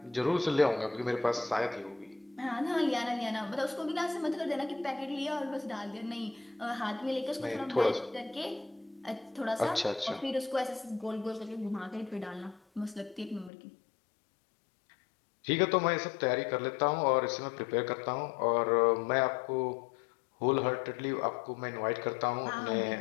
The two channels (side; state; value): right; drops out; at 13.5 s